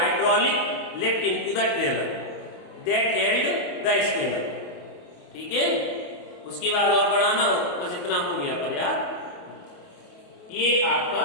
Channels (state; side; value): late; right; 28 ms